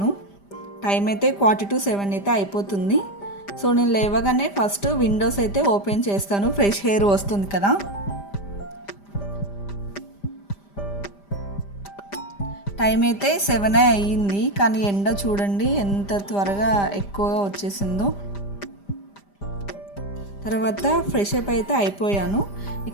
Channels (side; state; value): right; late; 5.0 ms